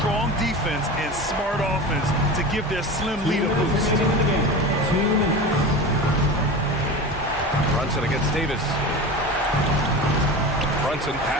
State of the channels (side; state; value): both; normal; correlation 0.29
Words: defense and smart offense to give their slim lead a boost. Brunson against Davis. Brunson